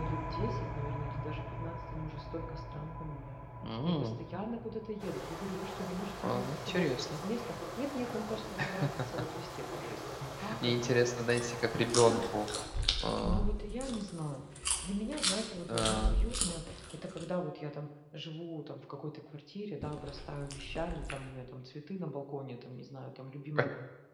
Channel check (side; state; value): both; identical; correlation 1.00